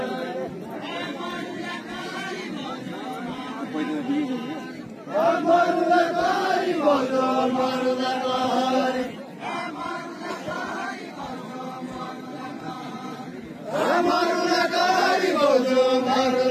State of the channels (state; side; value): identical; both; correlation 1.00